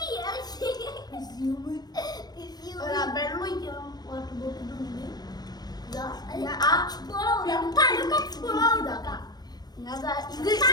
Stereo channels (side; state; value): right; late; 0.19 ms